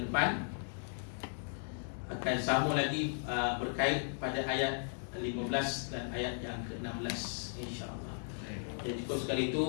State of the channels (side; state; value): right; silent; digital silence